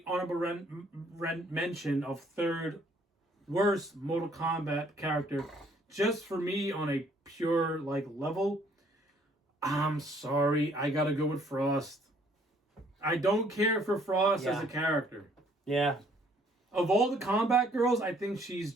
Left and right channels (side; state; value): both; normal; correlation 0.63